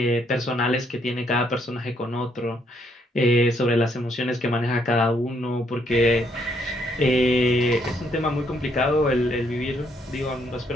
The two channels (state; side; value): normal; both; correlation 0.71